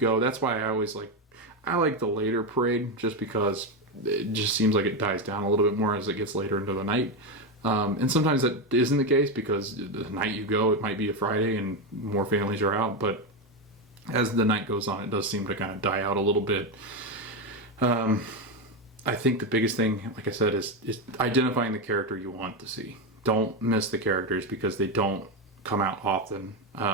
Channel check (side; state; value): both; normal; correlation 0.11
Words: that's why I like the later parade, just because it just seems like it dies down a little bit more as it gets later into the night. And sometimes that isn't the case because the night you go, it might be a Friday and more families are out. But as the night goes on, it does seem to kind of die out a little bit. I think the biggest thing, like I said, is identifying the character you want to see. Don't miss the characters because they don't come out often.